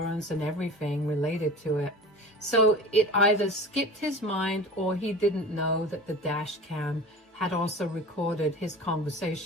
and everything related to it. So it either skipped his mind or he didn't know that the dash cam had also recorded his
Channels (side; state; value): both; normal; correlation 0.37